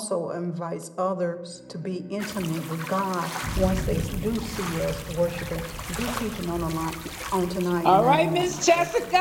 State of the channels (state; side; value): identical; both; correlation 1.00